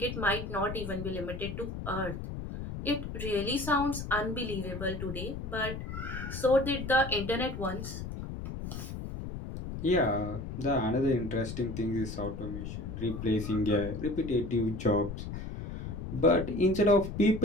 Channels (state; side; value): noise; left; rumble, 7 dB below the sound